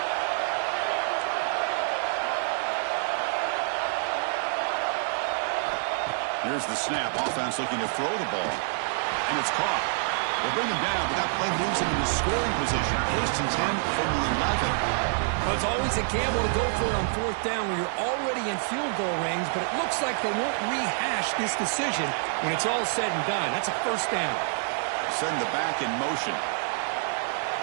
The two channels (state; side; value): silent; left; 60 dB below the other